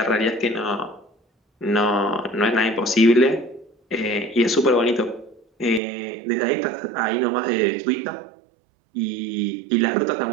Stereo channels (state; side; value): drops out; left; at 5.8 s